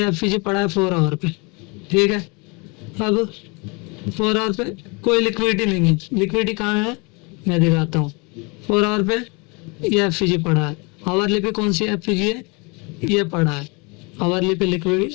एफपीजी पड़ा है 4 आवर पे, ठीक है। अब 4 आवर पे कोई लिक्विडिटी नहीं है, लिक्विडिटी कहाँ है मैं दिखाता हूँ। 4 आवर पे ये एफपीजी पड़ा है, आवरली पे कौन सी एफपीजी है, ये पड़ा है, आवरली पे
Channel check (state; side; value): quieter; right; 29.8 dB